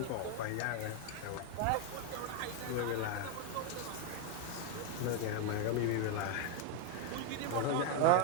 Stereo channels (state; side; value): different; both; correlation 0.01